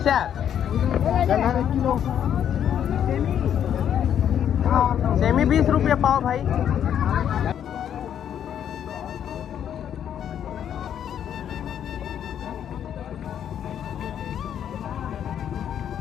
सेमी 20 रुपये पाव भाई।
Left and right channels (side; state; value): right; quieter; 9.4 dB